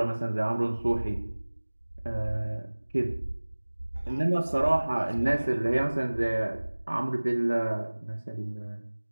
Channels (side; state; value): both; inverted; correlation -1.00